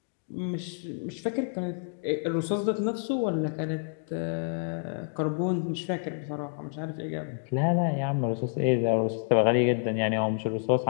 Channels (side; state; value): right; silent; digital silence